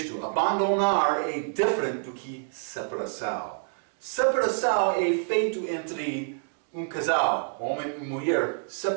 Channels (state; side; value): silent; left; digital silence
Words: abandonar é diferente do que separação. Separação é feito entre um casal, homem e mulher.